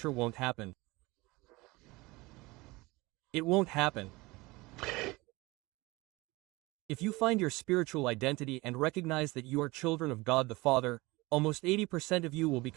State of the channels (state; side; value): quieter; left; 22.4 dB